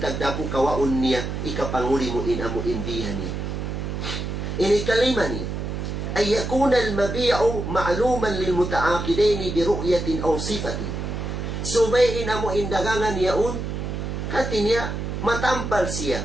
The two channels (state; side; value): noise; right; hum, 4 dB below the sound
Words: tagdapu kawaon niya ikapanguli mo in amo indihan niya. Ini kalima niya. أن يكون المبيع معلوما للمتعاقدين برؤية أو صفة. Subay amo indagangan yaun katinya matampal siya